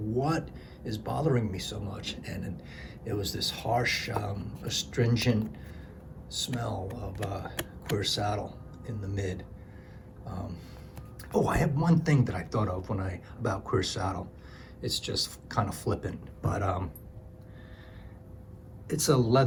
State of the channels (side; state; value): both; identical; correlation 1.00